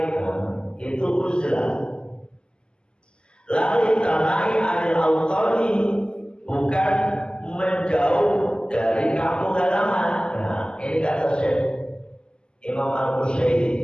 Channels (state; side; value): late; right; 0.048 ms